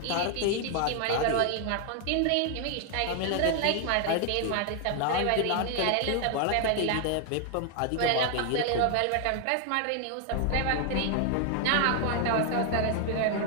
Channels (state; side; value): different; both; correlation 0.00